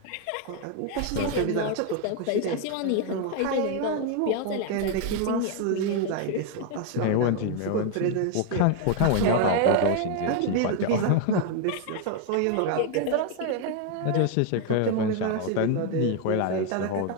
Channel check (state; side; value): different; both; correlation 0.01